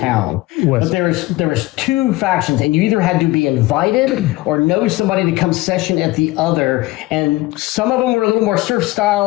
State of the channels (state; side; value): quieter; right; 19.5 dB